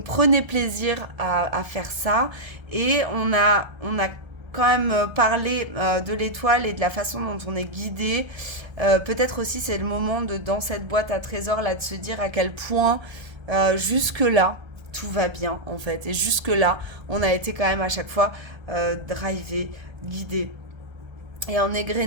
prenez plaisir à faire ça. Et on a quand même parlé de l'étoile et de la façon dont on est guidé. Peut-être aussi c'est le moment dans cette boîte à trésors là de se dire à quel point jusque-là tout va bien en fait. Et jusque-là on a été quand même à chaque fois drivé, guidé. Et en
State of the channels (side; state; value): left; late; 1.3 ms